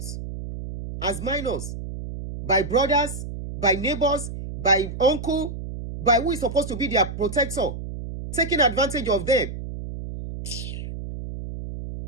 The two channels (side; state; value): right; noise; hum, 8 dB below the sound